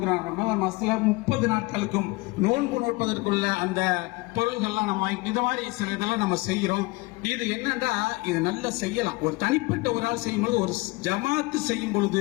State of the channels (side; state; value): right; quieter; 23.6 dB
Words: ரமதான் மாசத்துல 30 நாட்களுக்கும் நோன்பு நோட்பதற்குள்ள அந்த பொருள்கள்லாம் நம்ம வாங்கி இந்த மாதிரி சில இதெல்லாம் நம்ம செய்யறோம். இது என்னன்னா, இது நல்லா செய்யலாம். ஒரு தனிப்பட்ட ஒரு ஆள் செய்யும்போது, ஒரு ஜமாத்து செய்யும்